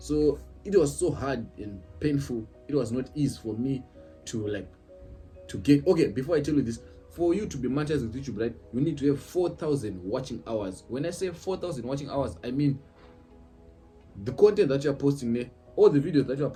it was so hard and painful. It was not easy for me to get. Okay, before I tell you this, for you to be monetized with YouTube, right, you need to have 4,000 watching hours. When I say 4,000 watching hours, I mean the content that you are posting there, all the videos that you are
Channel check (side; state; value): both; identical; correlation 1.00